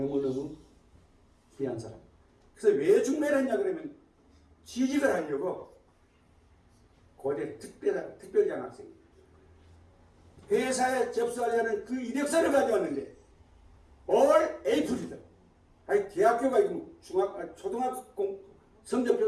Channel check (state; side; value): identical; both; correlation 1.00